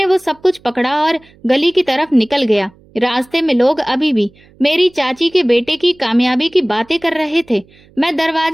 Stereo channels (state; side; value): noise; right; hum, 29 dB below the sound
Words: वो सब कुछ पकड़ा और गली की तरफ निकल गया। रास्ते में लोग अभी भी मेरी चाची के बेटे की कामयाबी की बातें कर रहे थे। मैं